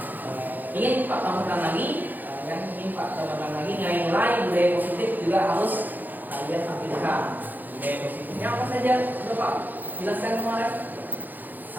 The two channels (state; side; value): late; left; 0.085 ms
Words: ingin Pak tambahkan lagi, nilai-nilai budaya positif juga harus kalian tampilkan. Budaya positifnya apa saja? Sudah Pak jelaskan kemarin.